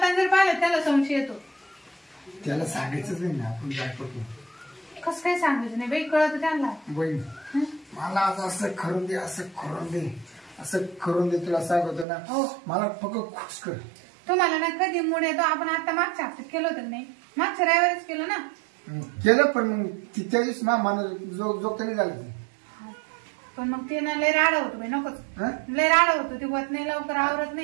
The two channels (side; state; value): left; drops out; at 12.1 s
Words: जर पाहिलं त्याला संशय येतो त्याला सांगायचंच नाही ना आपण काय करतो कसं काय सांगायचं नाही बाई कळत त्यांना बहीण मला आज असं करून दे असं करून दे तुला सांगतो ना हो मला फक्त खुश कर तुम्हाला ना कधी मूड येतो आपण आता मागच्या हप्त्यात केलं होतं नाही मागच्या रविवारीच केलं ना केलं पण मग त्या दिवशी मला जोगत नाही झालं ते पण मग ते ना लय राडा होतो बाई नकोच लय राडा होतो ते होत नाही लवकर आवरत